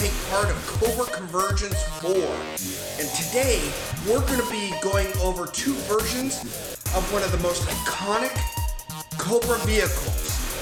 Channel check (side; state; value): both; identical; correlation 1.00